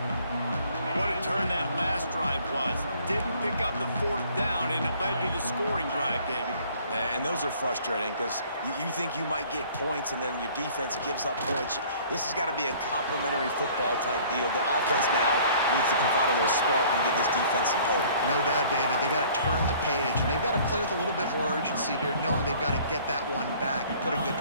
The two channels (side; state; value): both; inverted; correlation -0.54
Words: What a turn that last drive was. Didn't pick up the 4th down, and it led to the scoring drive, David. And those are frustrating because you think you might get points and then your defense gives up points. This has got to be a complimentary football type deal. The offense now needs to provide a little spark and give this defense some hope. No doubt, David. They got to turn the page, and they've got to play with a little bit more urgency here, knowing they've got to get that one back and put a good